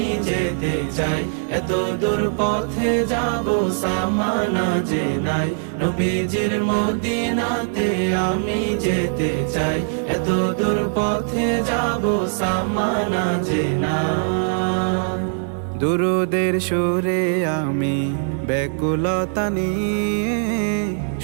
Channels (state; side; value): silent; left; 65 dB below the other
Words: যেতে চাই, এত দূর পথে যাব সামানা যে নাই। নবীজির মদিনাতে আমি যেতে চাই, এত দূর পথে যাব সামানা যে নাই। দুরুদের সুরে আমি ব্যাকুলতা নিয়ে